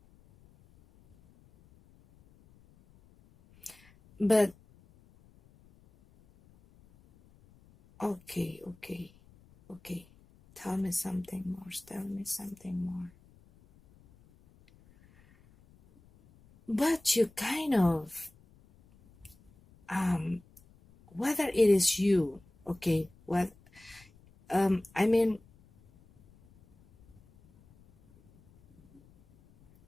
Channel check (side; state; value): left; noise; rumble, 28 dB below the sound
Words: But okay, okay, okay, tell me something more, tell me something more. But you kind of um whether it is you, okay, what I mean,